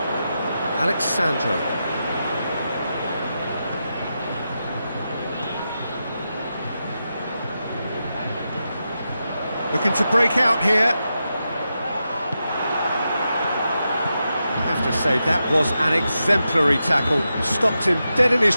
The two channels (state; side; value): inverted; both; correlation -0.88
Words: Alexandro. Looking to break out here. I have to say, that was an exemplary tackle. Stopped him dead in his